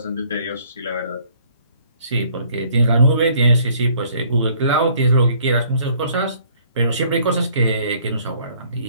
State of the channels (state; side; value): inverted; both; correlation -0.60